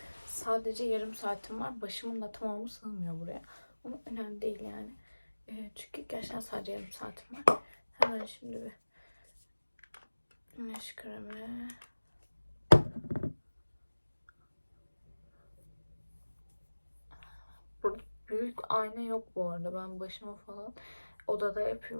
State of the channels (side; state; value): both; inverted; correlation -1.00